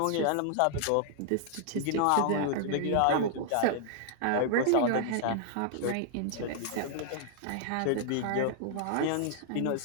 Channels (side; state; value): both; different; correlation -0.01